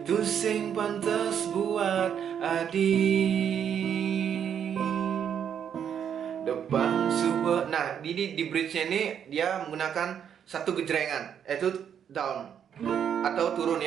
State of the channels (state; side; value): quieter; left; 8.4 dB